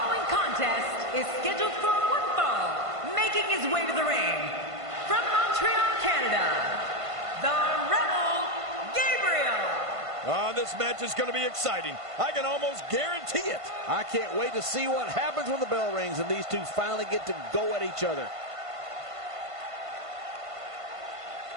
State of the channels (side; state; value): left; late; 1.5 ms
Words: contest is scheduled for one fall. Making his way to the ring, from Montreal, Canada, the Rebel Gabriel. Oh, this match is going to be exciting. I can almost guarantee it. I can't wait to see what happens when the bell rings and these two finally get to go at each other.